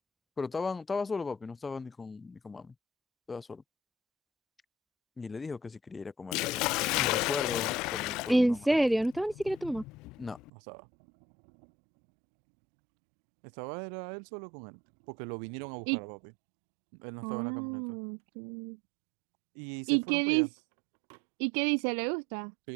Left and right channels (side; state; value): left; drops out; at 10.5 s